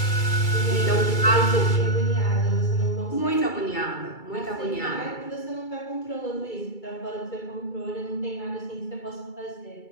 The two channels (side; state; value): right; late; 2.3 ms